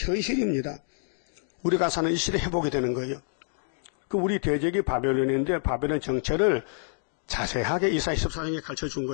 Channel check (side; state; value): right; silent; digital silence